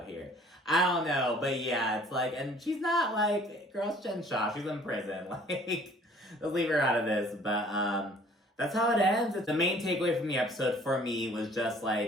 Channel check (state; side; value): normal; both; correlation 0.55